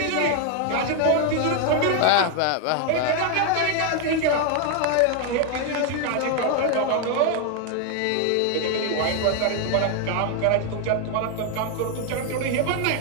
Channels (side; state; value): both; different; correlation 0.01